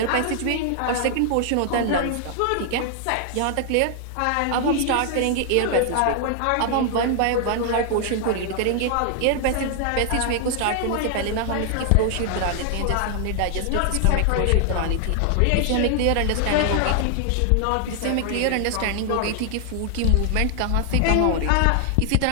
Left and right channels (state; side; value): different; both; correlation 0.00